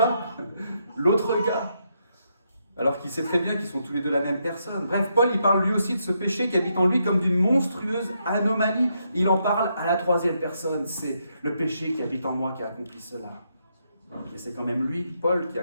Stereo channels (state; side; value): inverted; both; correlation -0.79